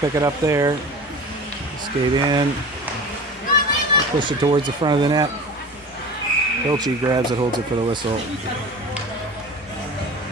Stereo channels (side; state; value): both; normal; correlation 0.36